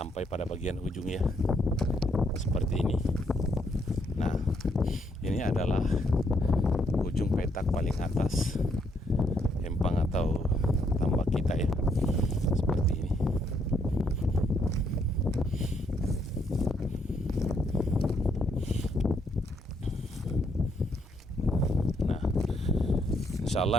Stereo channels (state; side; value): normal; both; correlation 0.73